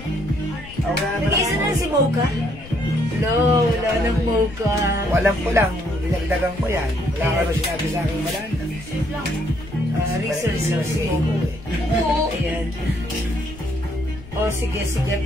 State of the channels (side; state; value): left; noise; rumble, 16 dB below the sound